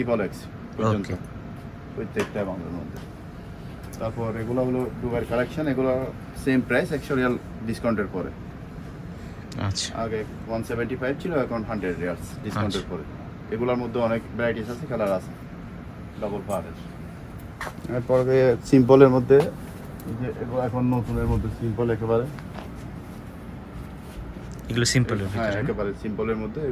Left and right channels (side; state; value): both; identical; correlation 1.00